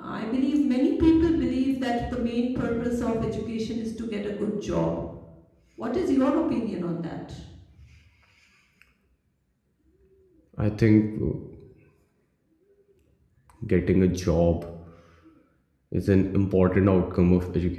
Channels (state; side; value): identical; both; correlation 1.00